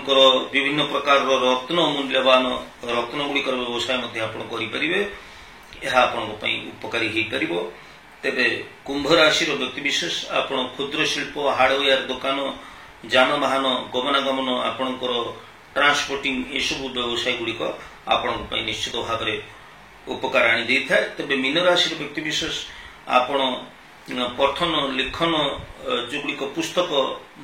ବିଭିନ୍ନ ପ୍ରକାରର ମୂଲ୍ୟବାନ ରତ୍ନ ଗୁଡ଼ିକର ବ୍ୟବସାୟ ମଧ୍ୟ ଆପଣ କରିପାରିବେ। ଏହା ଆପଣଙ୍କ ପାଇଁ ଉପକାରୀ ହୋଇପାରିବ। ତେବେ କୁମ୍ଭ ରାଶିର ବ୍ୟକ୍ତିବିଶେଷ ଆପଣ କ୍ଷୁଦ୍ର ଶିଳ୍ପ, ହାର୍ଡୱେୟାର ଦୋକାନ, ଯାନବାହନ, ଗମନାଗମନ, ଆପଣଙ୍କର ଟ୍ରାନ୍ସପୋର୍ଟିଂ ଏସବୁ ବ୍ୟବସାୟ ଗୁଡ଼ିକ ଆପଣଙ୍କ ପାଇଁ ନିଶ୍ଚିତ ଭାବରେ ଉପକାର ଆଣି ଦେଇଥାଏ। ତେବେ ମୀନ ରାଶିର ବ୍ୟକ୍ତିବିଶେଷ ଆପଣ ପଠନ, ଲେଖନ ଯେଉଁଗୁଡ଼ିକ ପୁସ୍ତକ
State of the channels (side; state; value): both; identical; correlation 1.00